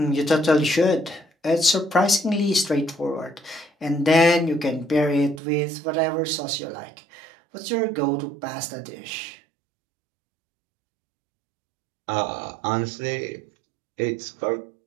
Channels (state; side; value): drops out; left; at 5.4 s